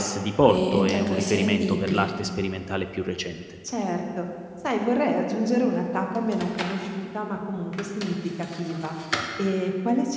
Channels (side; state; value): both; identical; correlation 1.00